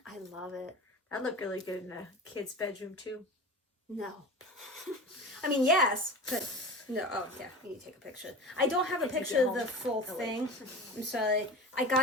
I love it. That looked really good in a kid's bedroom too. No. I mean, yes, but no. Oh, yeah, you need to take a picture. I don't have a picture of the full thing. I'm sorry. I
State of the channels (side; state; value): both; normal; correlation 0.32